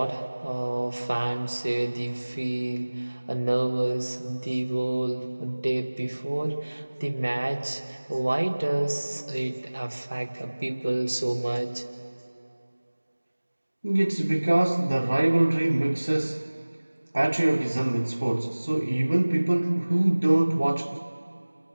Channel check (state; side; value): inverted; both; correlation -1.00